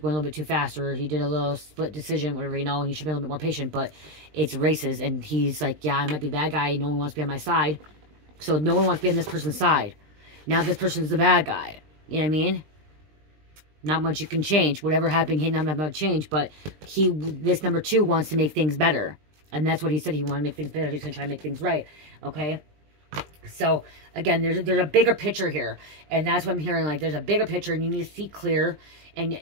a little bit too fast, or he did a little split decision, whatever, you know, and he should be a little bit more patient, but it's races, and he's like, yeah, I might be the bad guy, no one wants to be on my side, so no one wants to be on this person's side. Now this person's the bad guy, you know what I mean? Not much you can change. Whatever happened, he not much change, but this number 2 wants to make things better, and that's what he said. He wanted to make things better. He's going to try to make things right, okay? So, again, there's a bigger picture here. And that's what I'm hearing. Like, there's a bigger picture, and you need to see clear and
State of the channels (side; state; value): left; late; 20 ms